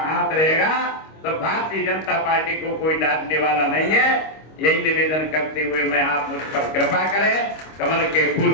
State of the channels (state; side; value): late; right; 25 ms